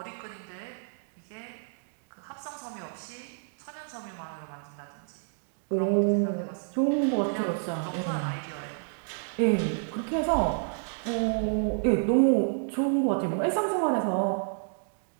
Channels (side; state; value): left; silent; digital silence